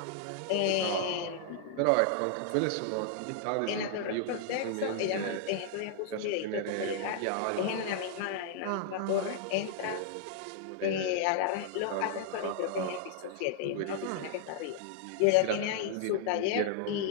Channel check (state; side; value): different; both; correlation -0.01